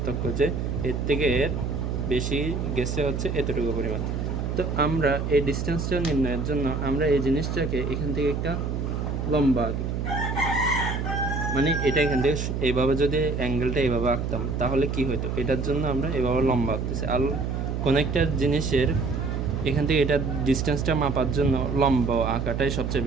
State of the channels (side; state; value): right; noise; hum, 2 dB below the sound